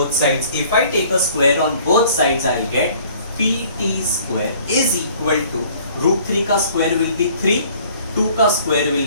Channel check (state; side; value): inverted; both; correlation -0.55